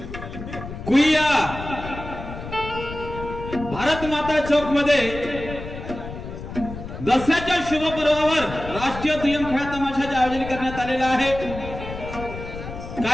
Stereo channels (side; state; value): left; noise; rumble, 10 dB below the sound